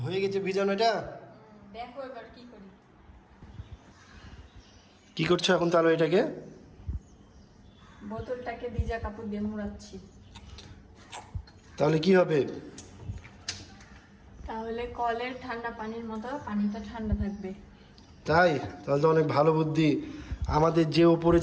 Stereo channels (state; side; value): identical; both; correlation 1.00